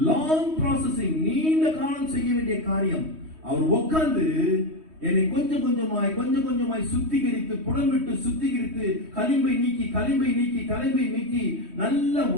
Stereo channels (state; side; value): late; left; 3.2 ms